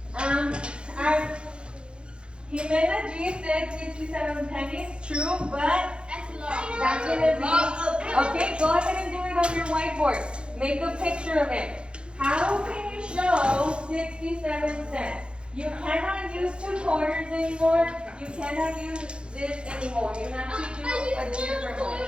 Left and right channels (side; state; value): left; late; 0.055 ms